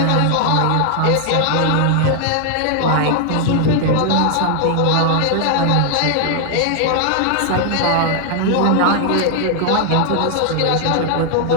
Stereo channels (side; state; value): both; different; correlation 0.00